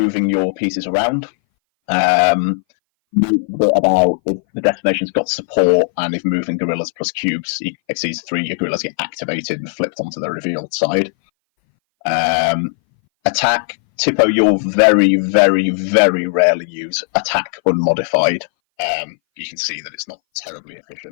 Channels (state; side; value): silent; right; 61 dB below the other